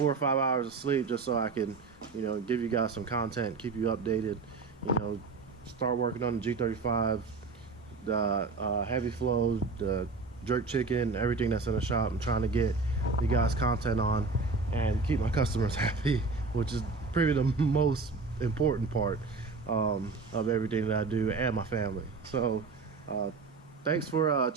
or 5 hours of sleep just so I can, you know, give you guys some content, keep you updated, you know, start working on the G35, the heavy flow, the jerk chicken, everything that's in the shop. I'm trying to get you guys content on and keep my customers happy, which is probably the most important part of everything that I do, and my family. So thanks for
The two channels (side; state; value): left; quieter; 4.2 dB